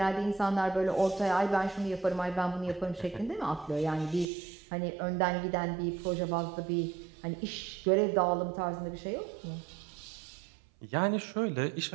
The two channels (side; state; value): left; drops out; at 4.2 s